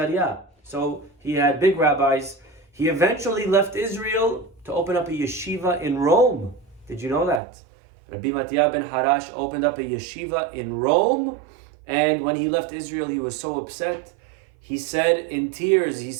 So he had big rabbis. He eventually left Israel to open up a yeshiva in Rome. Did you know that? Rabbi Mattia ben Harash opened up a yeshiva in Rome, and when he left Israel, he was so upset. He said in tears,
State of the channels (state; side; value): drops out; left; at 7.4 s